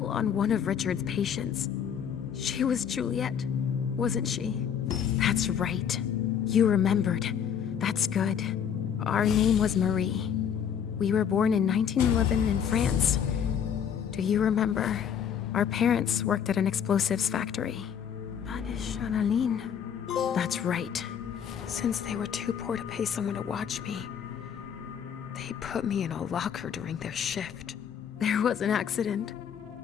on one of Richard's patients. She was Juliet, wasn't she? That's right. You remembered. That's good. Our name was Marie. We were born in 1911 in France. Do you remember? Our parents worked at an explosives factory. Channeline. That's right. Since they were too poor to pay someone to watch me, they put me in a locker during their shift. There was an accident.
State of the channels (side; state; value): right; quieter; 8.2 dB